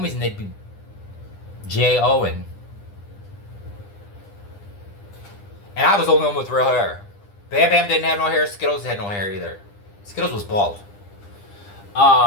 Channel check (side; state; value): right; late; 9.9 ms